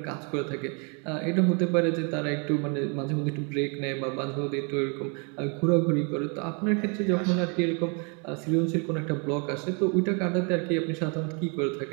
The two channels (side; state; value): left; quieter; 35.3 dB